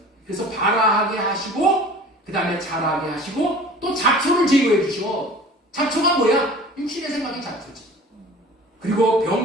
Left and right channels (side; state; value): both; normal; correlation 0.43